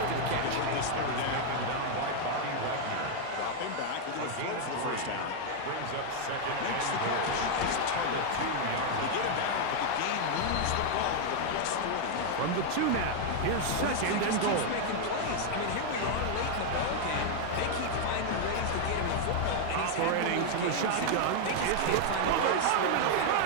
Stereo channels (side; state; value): both; different; correlation 0.00